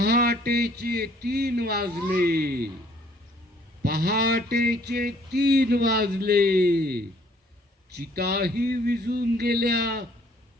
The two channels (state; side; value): normal; both; correlation 0.61